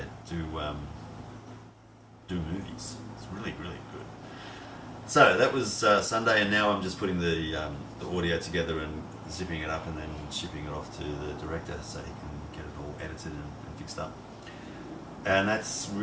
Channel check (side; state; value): both; identical; correlation 1.00